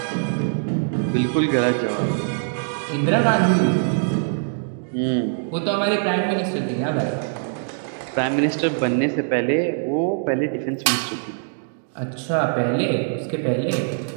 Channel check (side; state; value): left; silent; digital silence